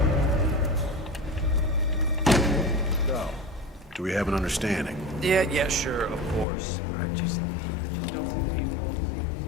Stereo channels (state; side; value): drops out; right; at 6.5 s